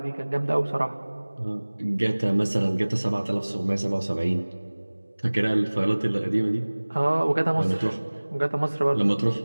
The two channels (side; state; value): both; inverted; correlation -1.00